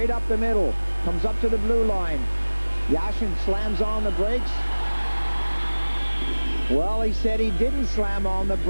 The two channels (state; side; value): inverted; both; correlation -1.00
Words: up the middle. Comes up to the blue line. Yashin slams on the brakes. Well, he said he didn't slam on the